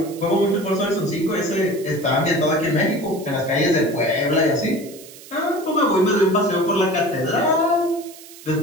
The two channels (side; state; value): right; noise; hiss, 18 dB below the sound